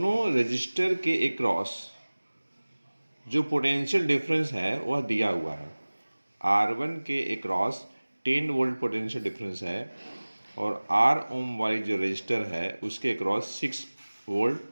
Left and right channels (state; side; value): inverted; both; correlation -1.00